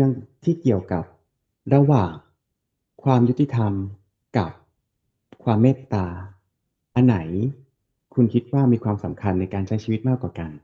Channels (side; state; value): both; identical; correlation 1.00